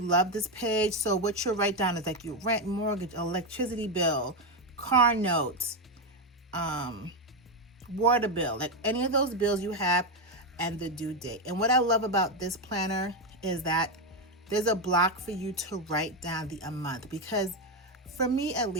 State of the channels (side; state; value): both; normal; correlation 0.08